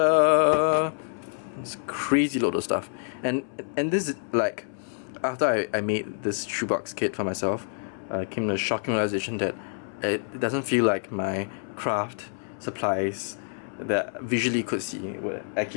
It's crazy load of stuff. And this is like, after I made this shoebox kit for myself, came to a shocking realization that it doesn't feel like my craft supplies that visually could see would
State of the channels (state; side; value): silent; right; 60 dB below the other